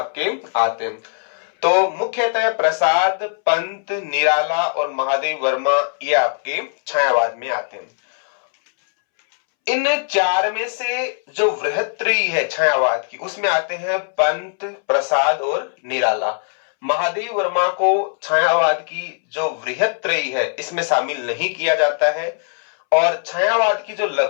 आते हैं। तो मुख्यतः प्रसाद, पंत, निराला और महादेवी वर्मा ये आपके छायावाद में आते हैं। इन 4 में से जो वृहत्त्रयी है छायावाद की, उसमें आते हैं पंत, प्रसाद और निराला। महादेवी वर्मा को छायावाद की जो वृहत्त्रयी है इसमें शामिल नहीं किया जाता है, और छायावाद की जो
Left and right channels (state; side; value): silent; right; 66 dB below the other